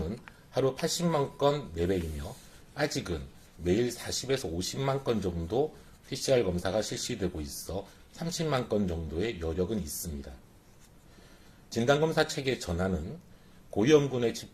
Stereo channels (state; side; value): identical; both; correlation 1.00